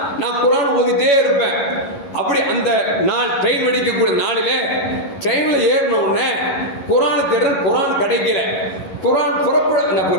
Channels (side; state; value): right; late; 11 ms